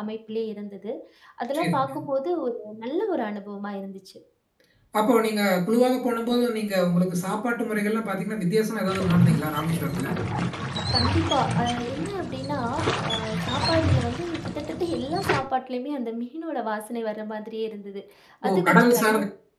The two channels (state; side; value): identical; both; correlation 1.00